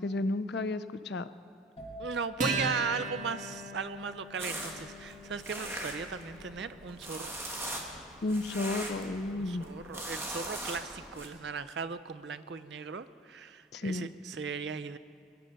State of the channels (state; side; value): normal; both; correlation 0.39